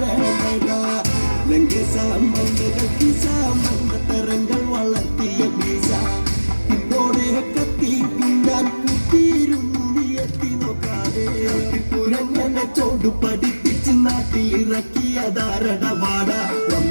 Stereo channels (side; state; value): both; inverted; correlation -1.00